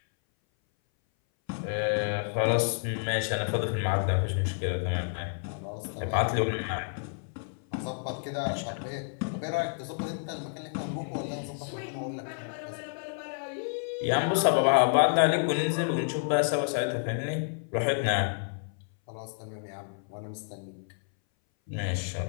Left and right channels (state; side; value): silent; right; 58 dB below the other